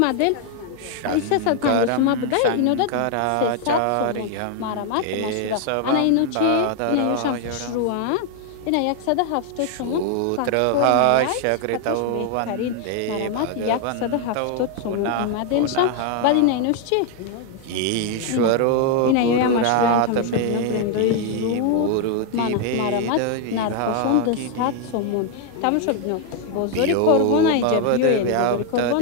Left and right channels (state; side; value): different; both; correlation 0.00